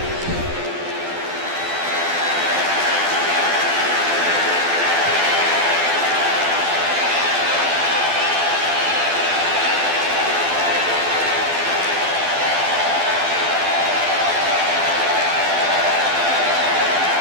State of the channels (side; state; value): left; late; 12 ms